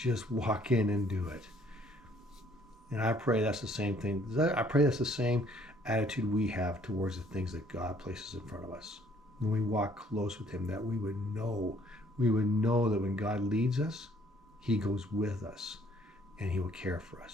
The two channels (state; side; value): normal; both; correlation 0.62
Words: walk in and do it. And I pray that's the same thing. I pray that's the same attitude we have towards the things that God places in front of us. When we walk close with him, that we would know that when God leads us, he goes with us and he will care for